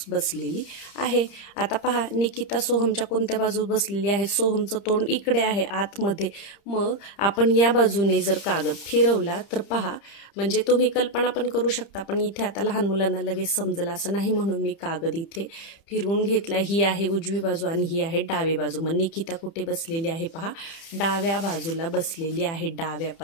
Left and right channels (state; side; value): late; right; 30 ms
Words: बसलेली आहे. आता पहा, निकिता सोहमच्या कोणत्या बाजूस बसलेली आहे, सोहमचं तोंड इकडे आहे आतमध्ये. मग आपण या बाजूने जर कागद फिरवला तर पहा, म्हणजे तुम्ही कल्पना पण करू शकता, पण इथे आता लहान मुलांना लगेच समजलं असं नाही म्हणून मी कागद इथे फिरवून घेतला. ही आहे उजवी बाजू आणि ही आहे डावी बाजू. मग निकिता कुठे बसलेली आहे पहा, डाव्या बाजूला बसलेली आहे. डाव्या